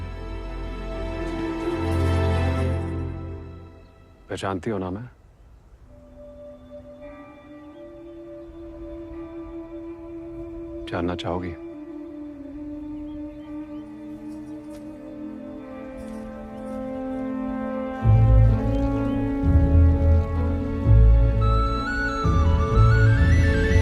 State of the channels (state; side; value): identical; both; correlation 1.00